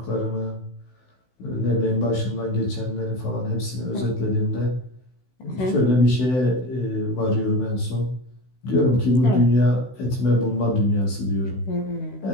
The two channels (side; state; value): right; late; 16 ms